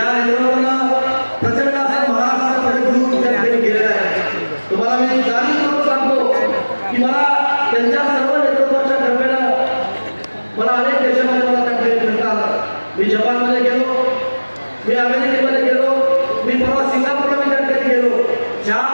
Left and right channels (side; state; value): both; inverted; correlation -1.00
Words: नेतृत्वानं प्रचंड असं महाराष्ट्राकडे घेऊन त्या ठिकाणी गेलेलं आहे. तुम्हाला मी जाणीवपूर्वक सांगतो की मला त्यांच्या सर्व नेतृत्वाच्या कृपेनं मला अनेक देशामध्ये मला त्या ठिकाणी फिरता आलं. मी जपानमध्ये गेलो, मी अमेरिकेमध्ये गेलो, मी परवा सिंगापूरला मी त्या ठिकाणी गेलो. ज्या